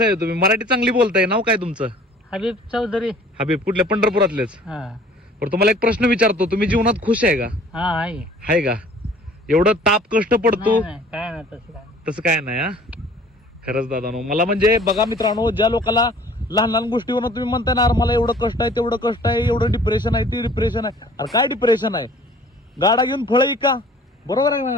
आहे तुम्ही? मराठी चांगली बोलताय. नाव काय तुमचं? हबीब चौधरी. हबीब, कुठल्या? पंढरपुरातलेच. हा पण तुम्हाला एक प्रश्न विचारतो, तुम्ही जीवनात खुश आहे का? हा आहे. आहे का? एवढं ताप कष्ट पडतो नाही, काय नाही तसं काय. तसं काय नाही. हा, खरंच दादानो, मला म्हणजे बघा मित्रांनो, ज्या लोकांना लहान लहान गोष्टीवर तुम्ही म्हणताय ना, मला एवढं कष्ट आहे, तेवढं कष्ट आहे, एवढं डिप्रेशन आहे, ते डिप्रेशन आहे. अरे काय डिप्रेशन आहे? गाडा घेऊन फळ का? बरोबर आहे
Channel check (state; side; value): normal; both; correlation 0.51